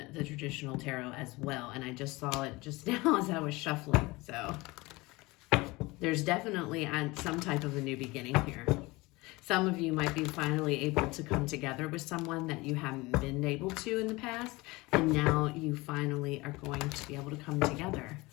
the traditional tarot as well, and I just saw it just now as I was shuffling. So there's definitely some type of a new beginning here. Some of you might be finally able to come together with someone that you haven't been able to in the past, and now you finally are going to be able to come together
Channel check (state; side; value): quieter; right; 22.5 dB